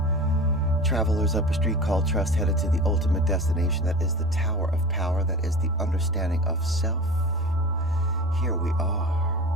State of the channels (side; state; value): both; normal; correlation 0.35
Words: Travelers up a street called trust, headed to the ultimate destination. That is the Tower of Power. That is the understanding of self. Here we are.